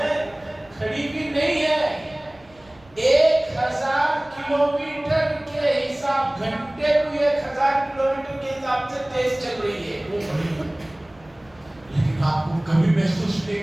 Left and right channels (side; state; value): right; noise; rumble, 28 dB below the sound